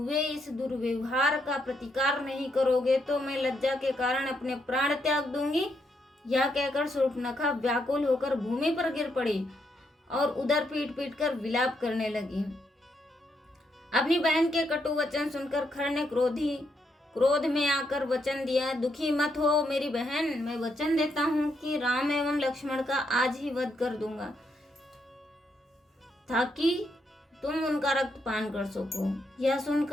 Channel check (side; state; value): both; normal; correlation 0.78